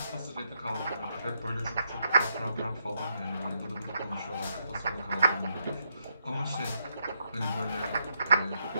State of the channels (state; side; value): inverted; both; correlation -0.79